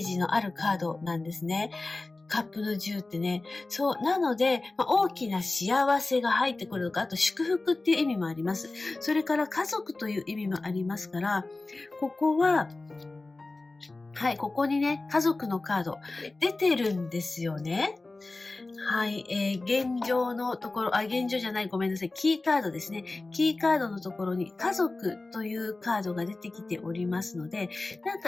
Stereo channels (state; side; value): quieter; right; 3.2 dB